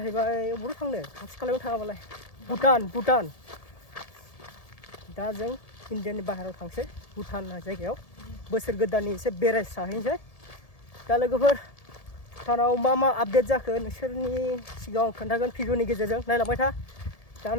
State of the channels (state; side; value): late; right; 1.7 ms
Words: बबेयाव थांनो खाथि खालायाव थाङाबालाय भुटान दा जों इण्डियानि बाहेरायाव थांसै भुटान जायगायाव बोसोर गोदाननि एसे बेरायस्राहैनोसै दा लोगोफोर भुटानाव मा आपडेट जाखो नोंसोरनि सिगाङाव खोन्थागोन भिडिअनि गेजेरजों नायलांबाय था दा